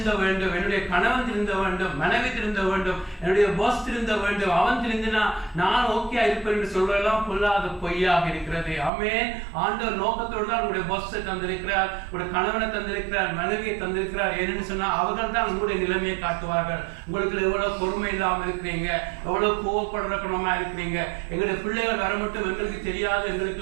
வேண்டும், என்னுடைய கணவன் திருந்த வேண்டும், மனைவி திருந்த வேண்டும், என்னுடைய பாஸ் திருந்த வேண்டும், அவன் திருந்தினா நான் ஓகே இருப்பேன் என்று சொல்றதெல்லாம் பொல்லாத பொய்யாக இருக்கிறது. ஆமென். ஆண்டவர் நோக்கத்தோடு தான் உங்களுடைய பாஸை தந்திருக்கிறார், உங்களுடைய கணவனை தந்திருக்கிறார், மனைவியை தந்திருக்கிறார். ஏன்னு சொன்னா அவர்கள் தான் உங்களுடைய நிலைமையை காட்டுவார்கள். உங்களுக்கு எவ்வளவு பொறுமை இல்லாம இருக்கிறீங்க, எவ்வளவு கோவப்படுற குணமா இருக்கிறீங்க, எங்களுடைய பிள்ளைகள் வர மட்டும் எங்களுக்கு தெரியாது,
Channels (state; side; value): drops out; left; at 8.9 s